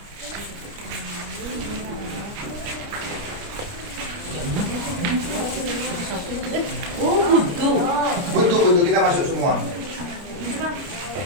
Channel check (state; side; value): late; left; 29 ms